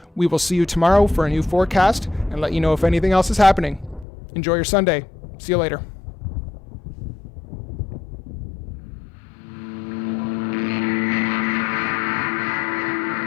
We will see you tomorrow for a new forecast and let you know if anything else is happening. Enjoy your Sunday. See you later.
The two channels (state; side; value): drops out; right; at 4.0 s